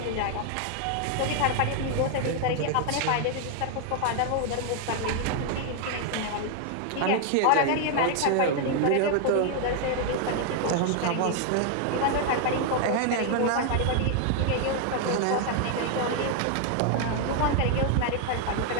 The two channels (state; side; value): different; both; correlation 0.00